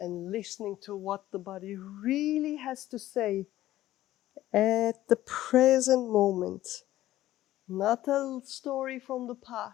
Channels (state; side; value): quieter; right; 14.6 dB